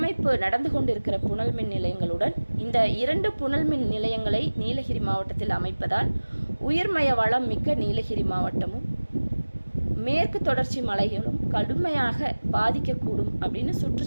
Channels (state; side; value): inverted; both; correlation -1.00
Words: நடந்து கொண்டிருக்கிற புனல்மின் நிலையங்களுடன் இந்த 2 புனல்மின் நிலையங்களை நீலகிரி மாவட்டத்தில் அமைப்பதால் உயிர்மய வளம் மிக்க நீலகிரி மாவட்டமும் மேற்கு தொடர்ச்சி மலைகளும் கடுமையாக பாதிக்கக்கூடும் அப்படின்னு